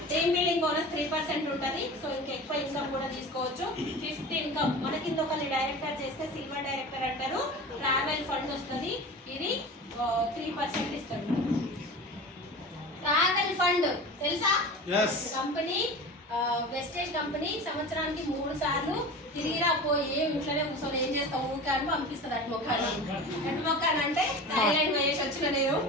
టీమ్ బిల్డింగ్ బోనస్ 3% ఉంటుంది. సో ఇంకా ఎక్కువ ఇన్కమ్ కూడా తీసుకోవచ్చు. 5th ఇన్కమ్ మన కింద ఒకరిని డైరెక్టర్ చేస్తే సిల్వర్ డైరెక్టర్ అంటారు. ట్రావెల్ ఫండ్ వస్తుంది, ఇది 3% ఇస్తాడు. ట్రావెల్ ఫండ్ తెలుసా? కంపెనీ వెస్టేజ్ కంపెనీ సంవత్సరానికి 3 సార్లు తిరిగిరా పోయి ఇంట్లోనే కూర్చొని ఏం చేస్తావు ఊకే అని పంపిస్తుంది. అటుమొక్కాని అంటే థాయిలాండ్ వేసి వచ్చిన, నేను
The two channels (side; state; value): both; normal; correlation 0.33